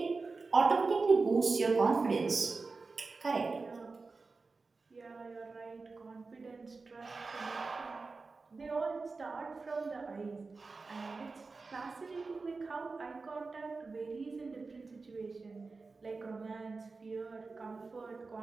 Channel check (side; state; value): left; quieter; 4.1 dB